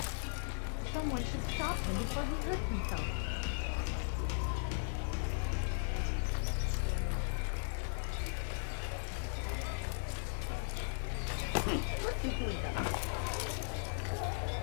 Someone should stop him before he hurts himself. What's he doing?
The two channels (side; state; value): right; silent; digital silence